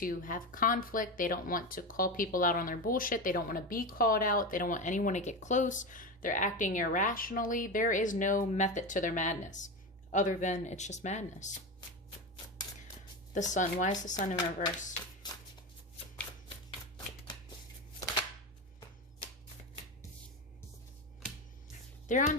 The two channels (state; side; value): normal; both; correlation 0.20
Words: have conflict. They don't want to call people out on their bullshit. They don't want to be called out. They don't want anyone to get close. They're acting irrationally. There is no method to their madness other than it's just madness. The Sun. Why is the Sun in reverse? They're